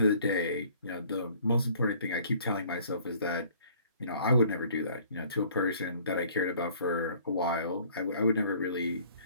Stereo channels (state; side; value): inverted; both; correlation -0.56